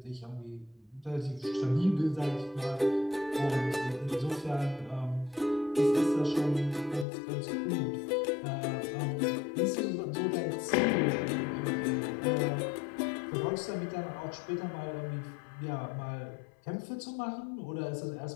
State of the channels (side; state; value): right; drops out; at 7.1 s